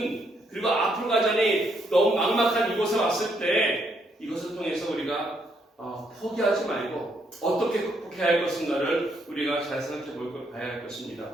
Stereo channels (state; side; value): normal; both; correlation 0.74